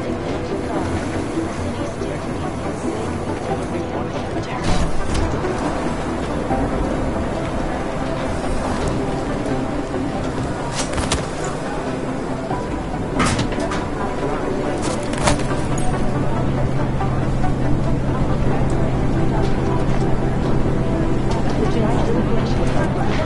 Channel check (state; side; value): identical; both; correlation 1.00